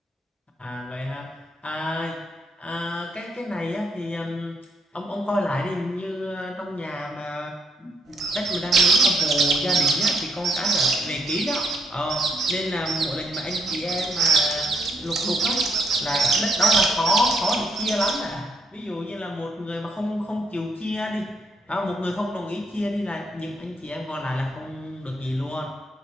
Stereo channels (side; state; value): both; normal; correlation 0.73